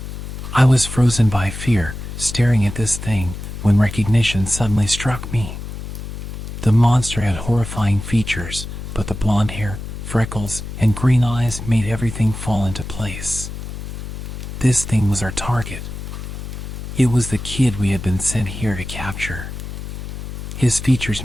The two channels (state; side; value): noise; left; hum, 8 dB below the sound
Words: I was frozen by fear, staring at this thing, when recognition suddenly struck me. The monster had horrifying features, but the blonde hair, freckles, and green eyes made everything fall into place. This thing was our target. It was the kid we had been sent here to capture. His